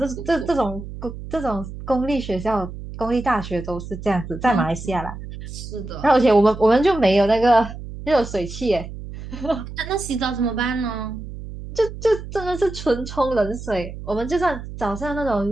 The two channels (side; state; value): right; noise; hum, 11 dB below the sound